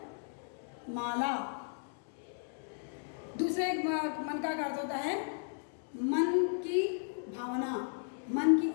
माला, दूसरे मन का अर्थ होता है मन की भावना, मन की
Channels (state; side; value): silent; right; digital silence